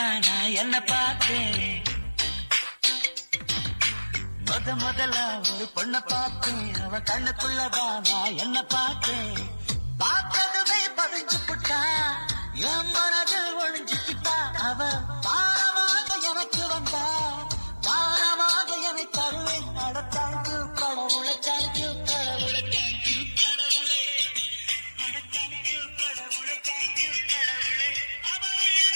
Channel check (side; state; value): both; inverted; correlation -1.00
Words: நான் என்ன பார்த்தேன். முதல்ல ஒரு பொண்ண பார்த்தேன், அவ கண்ணுக்குள்ளதான் நான் என்ன பார்த்தேன். பார்த்ததுமே பதிஞ்சு புட்டா, என் மனதில் ஒழிஞ்சுக்கிட்டா. அவ பாரமாக எனக்கு வந்தா, பாரமாக என்னை தருவேன். நடத்தாய்க்கு கடவுளை, தேங்க்யூ கடவுளை, தேங்க்யூ கடவுளே, தேங்க்யூ கடவுளை, தேங்க்யூ கடவுளே. அவள்